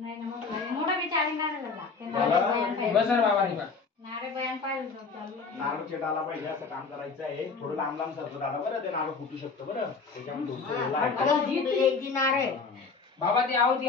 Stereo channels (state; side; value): quieter; right; 4.7 dB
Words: ना मोठा विचारिंग झाला बस रे बाबा रे नारे बयान पाहिजे चालू नारळ चिटाला पाहिजे असं काम करायचं आहे थोडं लांब लांब सरकत दादा बरं ते नारळ फुटू शकतं बरं त्याच्यामुळे नारे बाबा ते आवती